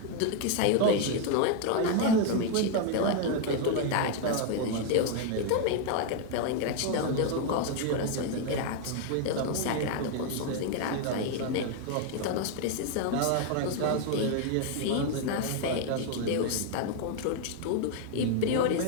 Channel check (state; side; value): different; both; correlation 0.01